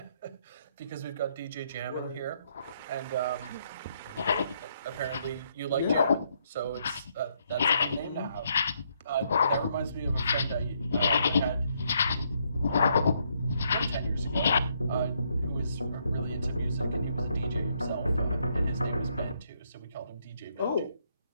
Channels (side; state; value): both; inverted; correlation -0.74